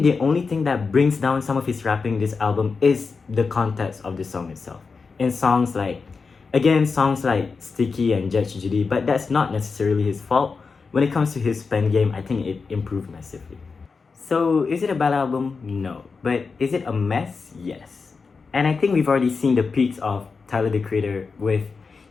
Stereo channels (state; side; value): quieter; right; 4.8 dB